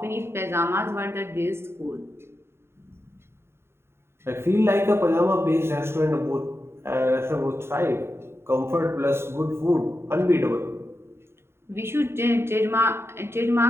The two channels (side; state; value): left; late; 0.12 ms